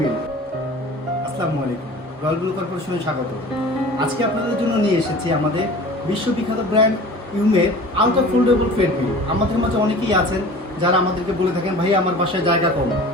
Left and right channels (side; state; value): both; normal; correlation 0.41